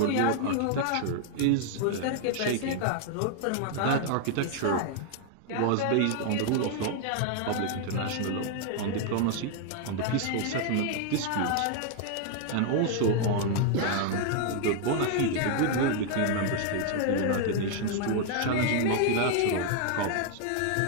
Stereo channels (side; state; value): both; different; correlation 0.00